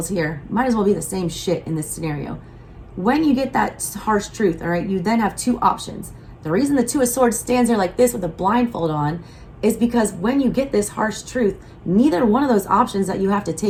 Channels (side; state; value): both; identical; correlation 1.00